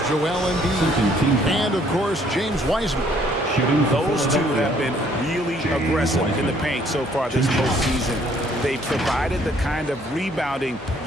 Joel Embiid, and of course James Wiseman. Those two have been really aggressive in the paint so far this postseason. They provided the kind of rebounding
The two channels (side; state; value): both; normal; correlation 0.63